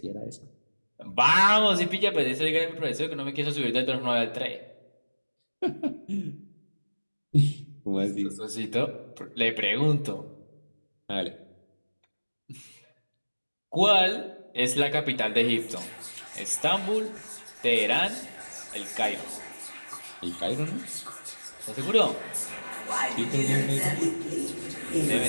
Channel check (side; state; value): both; inverted; correlation -1.00